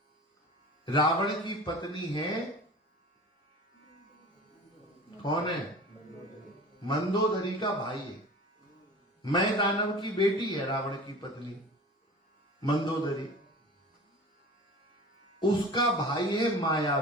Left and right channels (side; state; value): both; normal; correlation 0.38